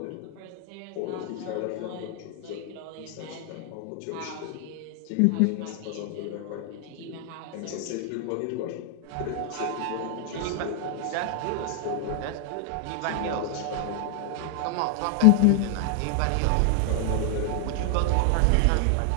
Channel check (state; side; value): different; both; correlation 0.00